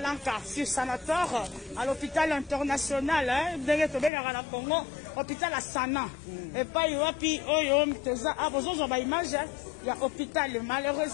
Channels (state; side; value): drops out; right; at 4.1 s